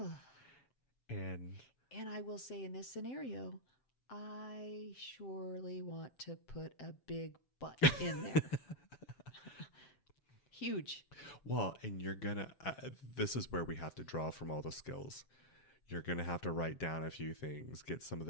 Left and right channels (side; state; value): right; late; 6.9 ms